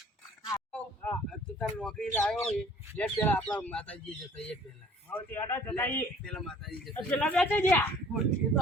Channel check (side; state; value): both; normal; correlation 0.52